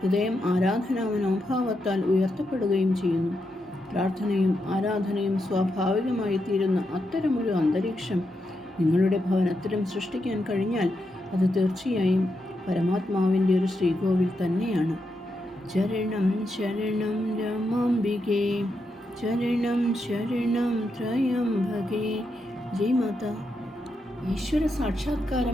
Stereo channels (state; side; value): normal; both; correlation 0.84